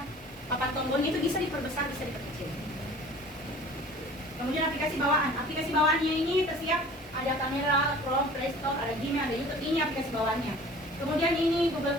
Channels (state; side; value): normal; both; correlation 0.46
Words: papan tombol itu bisa diperbesar, bisa diperkecil. Kemudian aplikasi bawaannya ini tersiap ada kamera, Chrome, Play Store, ada Gmail, ada YouTube, ini aplikasi bawaannya. Kemudian ini